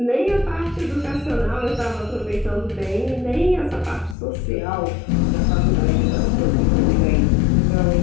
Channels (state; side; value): drops out; right; at 4.2 s